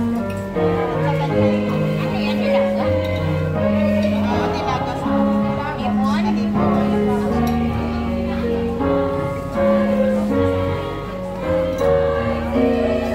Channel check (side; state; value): both; identical; correlation 1.00